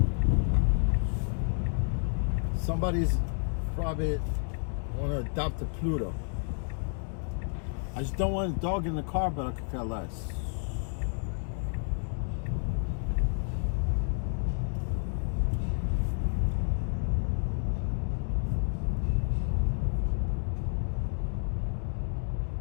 Somebody's probably want to adopt a Pluto. I just don't want a dog in the car, but I could care less.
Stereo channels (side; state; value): right; silent; 58 dB below the other